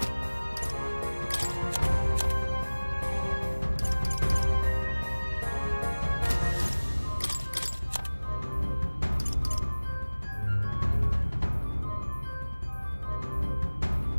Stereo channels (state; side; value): inverted; both; correlation -1.00